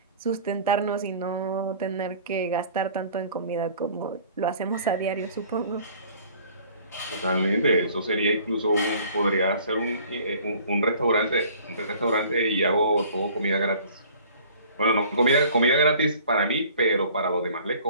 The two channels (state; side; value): inverted; both; correlation -0.51